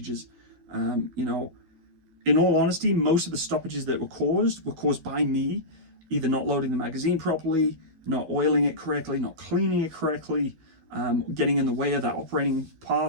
In all honesty, most of the stoppages that were caused by me either not loading the magazine properly, not oiling it correctly, not cleaning it correctly, getting in the way of that operating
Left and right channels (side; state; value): left; late; 12 ms